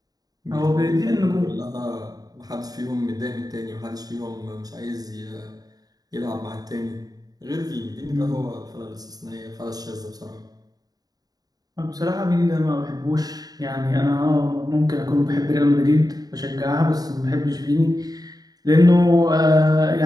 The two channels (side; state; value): left; late; 0.18 ms